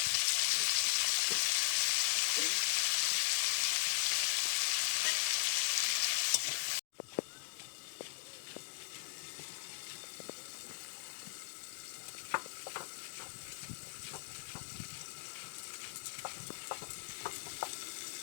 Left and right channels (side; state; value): right; silent; digital silence